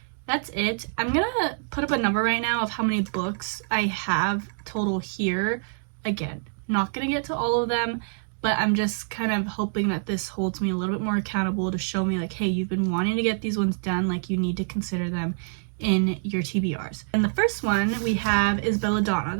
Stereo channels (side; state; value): left; silent; digital silence